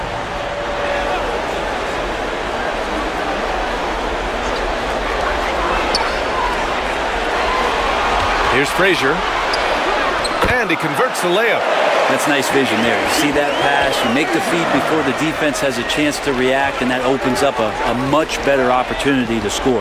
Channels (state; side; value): identical; both; correlation 1.00